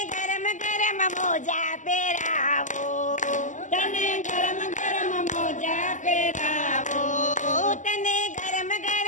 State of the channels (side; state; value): right; late; 0.36 ms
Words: ગરમ ગરમ મોજા પહેરાવો, તને ગરમ ગરમ મોજા પહેરાવો, તને ગરમ